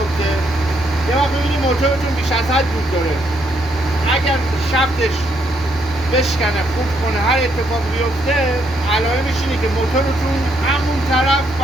یه وقت ببینید موتورتون بیش از حد دود داره، اگر شفتش بشکنه، خورد کنه، هر اتفاق بیفته، علائمش اینه که موتورتون همون طرف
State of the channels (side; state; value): left; noise; hum, 26 dB below the sound